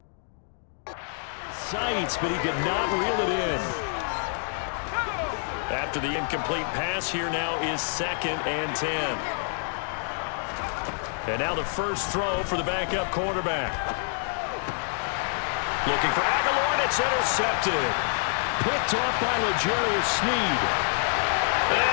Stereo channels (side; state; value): right; silent; 60 dB below the other